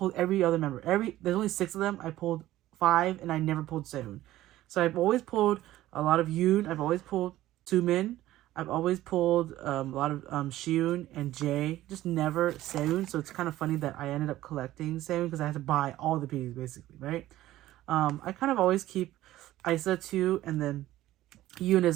every other member. There's only 6 of them. I pulled 5, and I never pulled Seunghan. So I've always pulled a lot of Yoon. I've always pulled Tumin. I've always pulled a lot of Shiun and Jae. Just never Seunghan. So it's kind of funny that I ended up collecting Seunghan because I had to buy all the pieces, basically, right? I kind of always keep aespa too, and then Yoon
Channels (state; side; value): quieter; left; 15.0 dB